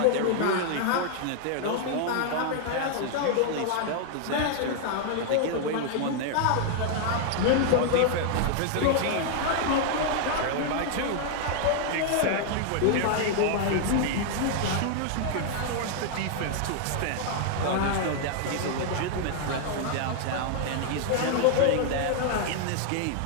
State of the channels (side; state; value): both; different; correlation 0.00